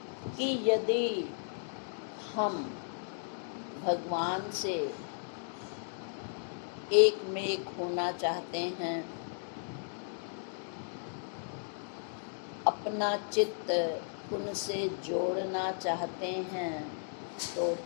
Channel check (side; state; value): right; silent; digital silence